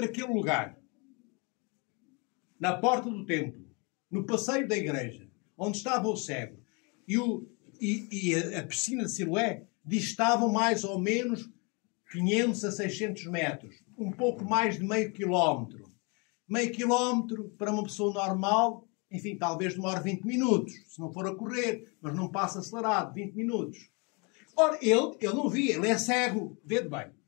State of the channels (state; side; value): quieter; right; 31.7 dB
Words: aquele lugar, na porta do templo, no passeio da igreja, onde estava o cego, e a piscina de Siloé, distavam mais ou menos 500 a 600 metros. Um pouco mais de meio quilómetro. Meio quilómetro, para uma pessoa normal, enfim, talvez demore 20 minutos, se não for a correr, mas não passa acelerado, 20 minutos. Ora, ele não via, ele é cego, vede bem.